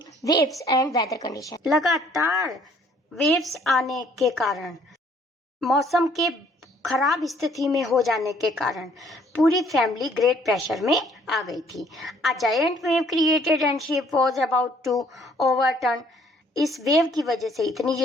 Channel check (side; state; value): both; normal; correlation 0.61